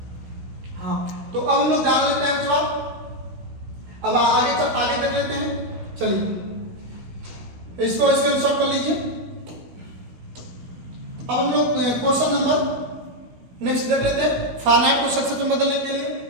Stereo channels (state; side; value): late; left; 16 ms